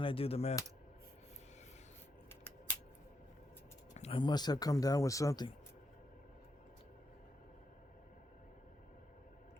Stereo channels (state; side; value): normal; both; correlation 0.81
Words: I do the math? I must have come down with something.